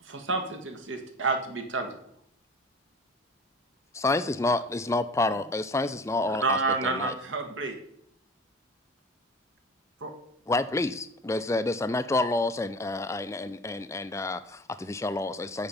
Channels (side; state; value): both; normal; correlation 0.37